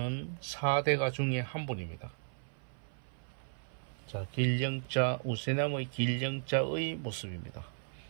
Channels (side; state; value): left; silent; 54 dB below the other